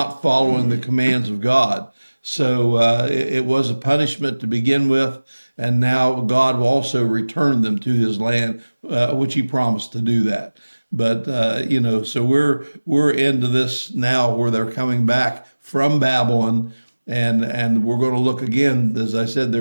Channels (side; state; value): both; inverted; correlation -1.00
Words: following the commands of God. So it was a punishment to begin with, and now God will also return them to his land, which he promised to do that. But so we're into this now, where they're coming back from Babylon, and we're going to look again. As I said,